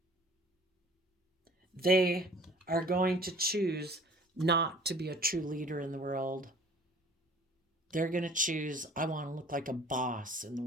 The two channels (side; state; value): both; normal; correlation 0.49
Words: They are going to choose not to be a true leader in the world. They're going to choose, I want to look like a boss in the